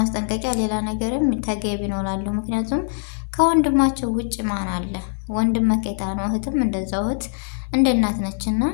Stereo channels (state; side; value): silent; right; digital silence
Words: ሌላ ነገርም ተገቢ ነው እላለሁ። ምክንያቱም ከወንድማቸው ውጭ ማን አለ? ወንድም መከታ ነው፣ እህትም እንደዛው እህት እንደ እናት ነችና